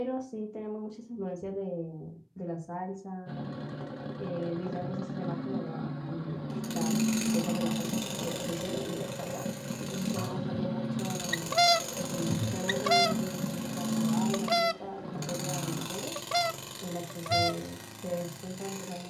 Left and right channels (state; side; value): identical; both; correlation 1.00